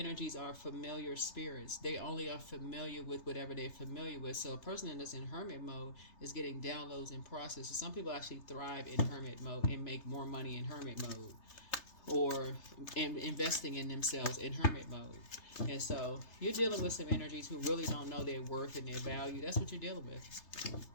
are familiar spirits. They only are familiar with whatever they're familiar with. So a person that's in hermit mode is getting downloads and processes. Some people actually thrive in hermit mode and make more money in hermit mode, or investing in themselves in hermit mode. And so you're dealing with some energies who really don't know their worth and their value. That's what you're dealing with.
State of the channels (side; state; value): right; late; 3.3 ms